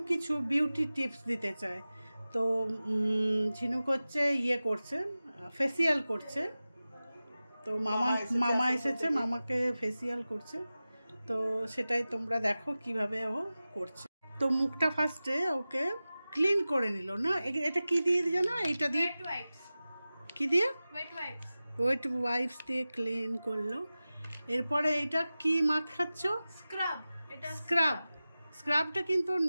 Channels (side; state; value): both; inverted; correlation -0.96